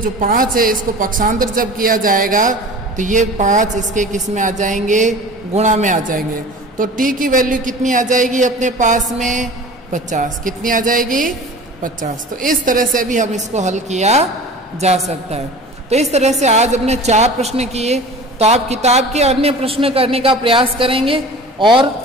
5 है, इसको पक्षांतर जब किया जाएगा तो ये 5 इसके किस में आ जाएंगे, गुणा में आ जाएंगे। तो t की वैल्यू कितनी आ जाएगी अपने पास में, 50। कितनी आ जाएगी, 50। तो इस तरह से भी हम इसको हल किया जा सकता है। तो इस तरह से आज हमने 4 प्रश्न किए। तो आप किताब के अन्य प्रश्न करने का प्रयास करेंगे और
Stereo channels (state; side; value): normal; both; correlation 0.39